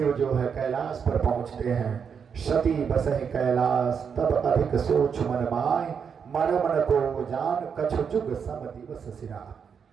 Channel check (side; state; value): left; quieter; 6.7 dB